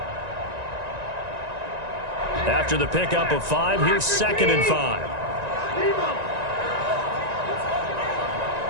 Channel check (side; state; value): left; late; 1.9 ms